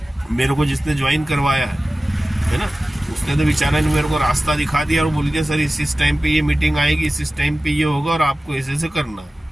मेरे को जिसने ज्वाइन करवाया है ना, उसने तो बेचारा ने मेरे को रास्ता दिखा दिया और बोल दिया सर इस टाइम पे ये मीटिंग आएगी, इस टाइम पे ये होगा और आपको ऐसे ऐसे करना है।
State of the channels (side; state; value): both; normal; correlation 0.96